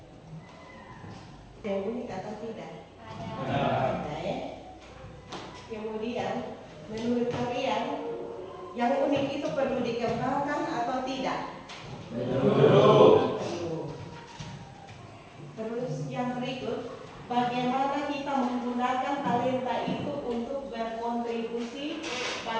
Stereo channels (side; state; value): both; identical; correlation 1.00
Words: Yang unik atau tidak? Ada ya. Kemudian menurut kalian yang unik itu perlu dikembangkan atau tidak? Perlu. Terus yang berikut, bagaimana kita menggunakan talenta itu untuk berkontribusi